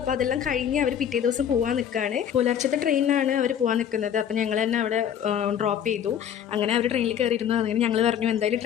അപ്പോൾ അതെല്ലാം കഴിഞ്ഞ് അവർ പിറ്റേ ദിവസം പോകാൻ നിൽക്കുകയാണ്. പുലർച്ചത്തെ ട്രെയിനിനാണ് അവർ പോകാൻ നിൽക്കുന്നത്. അപ്പോൾ ഞങ്ങൾ തന്നെ അവിടെ ഡ്രോപ്പ് ചെയ്തു. അങ്ങനെ അവർ ട്രെയിനിൽ കയറിയിരുന്നു. അങ്ങനെ ഞങ്ങൾ പറഞ്ഞു എന്തായാലും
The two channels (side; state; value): right; quieter; 9.2 dB